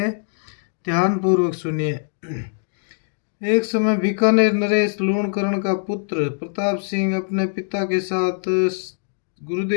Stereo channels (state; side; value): silent; right; digital silence